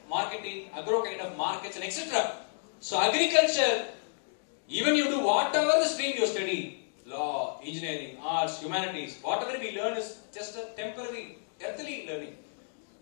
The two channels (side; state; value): right; silent; digital silence